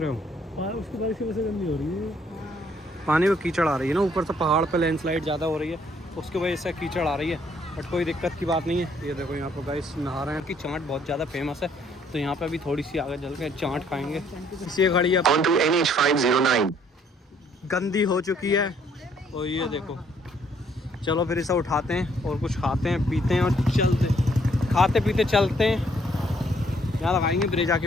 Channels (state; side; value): normal; both; correlation 0.65